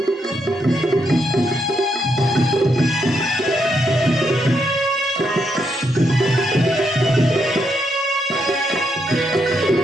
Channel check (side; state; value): both; normal; correlation 0.79